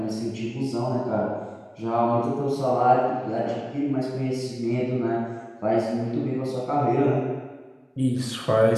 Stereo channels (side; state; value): both; identical; correlation 1.00